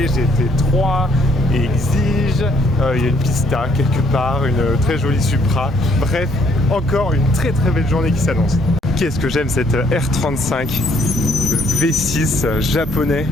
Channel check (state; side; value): normal; both; correlation 0.67